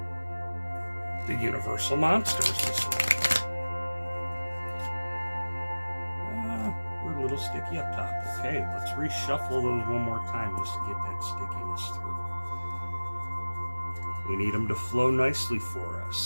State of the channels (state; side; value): inverted; both; correlation -1.00